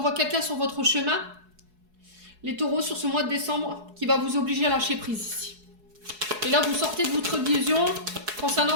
quelqu'un sur votre chemin. Les taureaux, sur ce mois de décembre, qui va vous obliger à lâcher prise ici. Et là, vous sortez de votre illusion concernant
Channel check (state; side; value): late; left; 4.7 ms